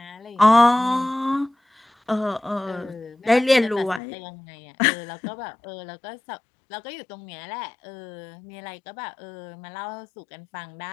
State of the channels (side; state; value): right; drops out; at 4.0 s